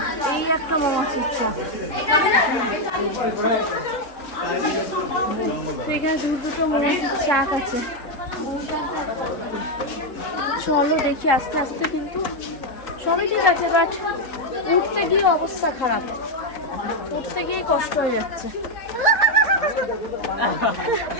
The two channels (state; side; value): late; right; 3.8 ms